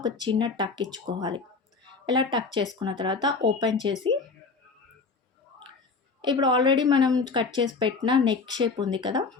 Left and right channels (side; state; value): right; quieter; 4.5 dB